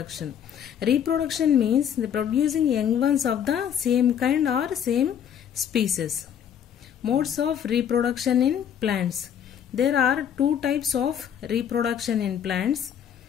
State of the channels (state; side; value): quieter; right; 8.9 dB